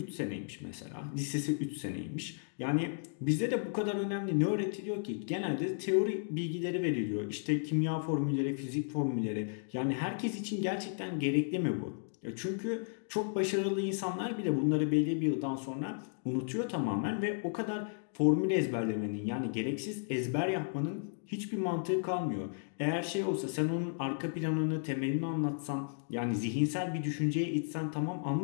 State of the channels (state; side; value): silent; right; digital silence